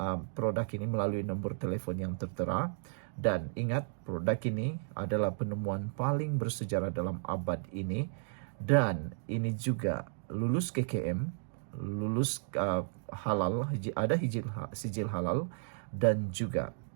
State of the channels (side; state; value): left; silent; digital silence